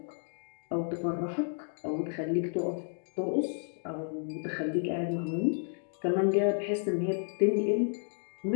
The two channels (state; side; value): silent; right; digital silence